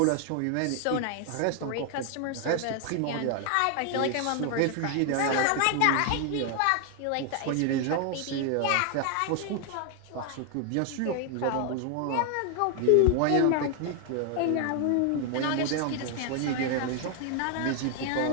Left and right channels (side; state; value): both; different; correlation 0.00